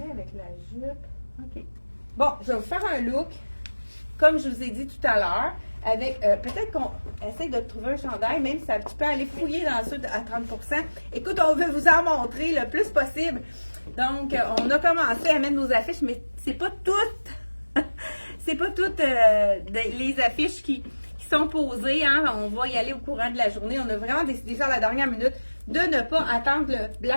avec la jupe, ok. Bon, je vais vous faire un look, comme je vous ai dit tout à l'heure, avec, peut-être qu'on essaie de trouver un chandail, même si tu peux aller fouiller dans ça à 30%. Écoute, on veut vous en montrer le plus possible. Donc, on a commencé à mettre nos affiches, mais c'est pas toutes, c'est pas toutes les affiches qui sont posées, hein. On va y aller au courant de la journée. On a vraiment décidé ça à la dernière minute de ne pas attendre le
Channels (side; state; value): both; inverted; correlation -1.00